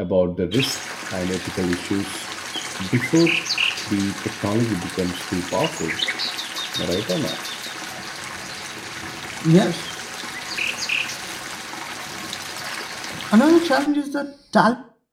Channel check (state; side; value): identical; both; correlation 1.00